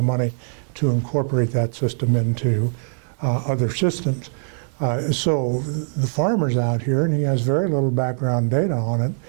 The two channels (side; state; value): left; silent; 62 dB below the other